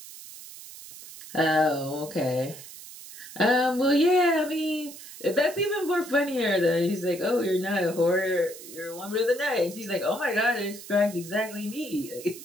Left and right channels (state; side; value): noise; right; hiss, 15 dB below the sound